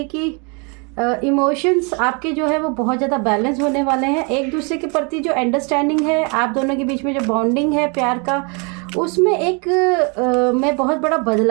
कि इमोशंस आपके जो है वो बहुत ज़्यादा बैलेंस होने वाले हैं। एक दूसरे के प्रति जो अंडरस्टैंडिंग है आप दोनों के बीच में जो बॉन्डिंग है प्यार का, उसमें एक मैं बहुत बड़ा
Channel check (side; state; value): left; quieter; 33.5 dB